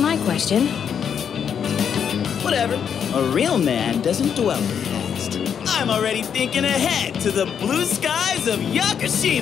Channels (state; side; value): quieter; right; 7.8 dB